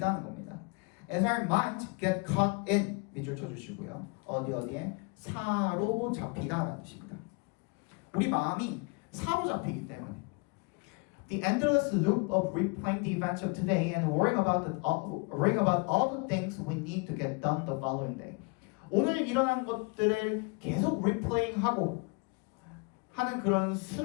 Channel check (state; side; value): quieter; right; 30.4 dB